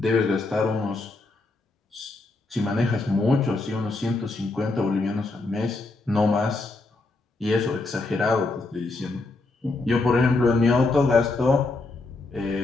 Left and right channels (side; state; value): right; quieter; 3.3 dB